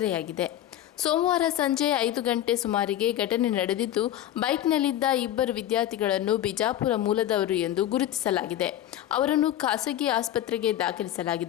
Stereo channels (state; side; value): quieter; right; 12.4 dB